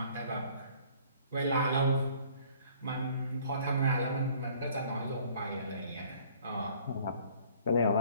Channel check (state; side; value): inverted; both; correlation -0.56